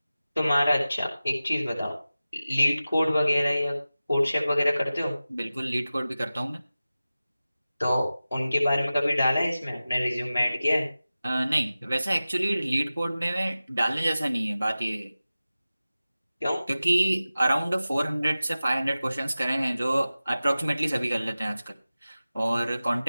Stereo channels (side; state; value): both; inverted; correlation -0.96